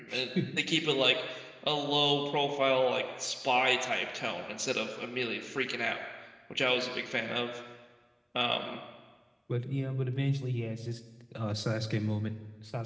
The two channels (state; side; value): identical; both; correlation 1.00